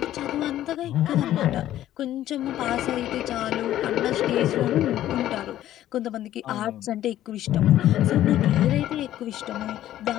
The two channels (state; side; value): quieter; right; 12.9 dB